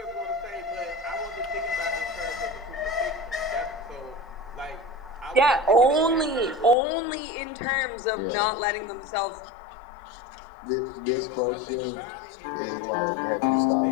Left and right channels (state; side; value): drops out; right; at 6.8 s